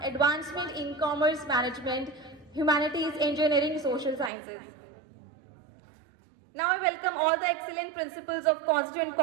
advancement in commerce, management, humanities, engineering, social sciences. Now I welcome all the excellent principals of constituent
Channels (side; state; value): left; drops out; at 4.3 s